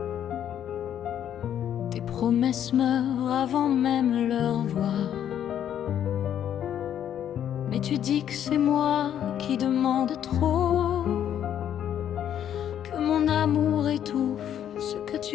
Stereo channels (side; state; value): right; quieter; 10.0 dB